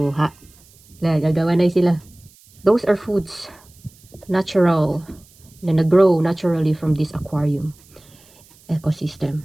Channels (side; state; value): right; noise; hiss, 28 dB below the sound